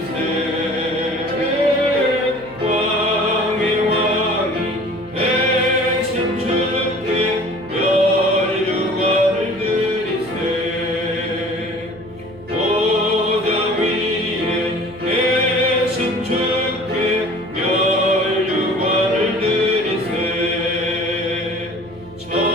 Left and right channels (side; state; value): right; noise; hum, 21 dB below the sound